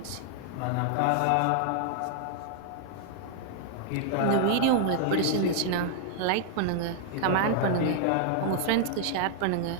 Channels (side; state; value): both; different; correlation 0.00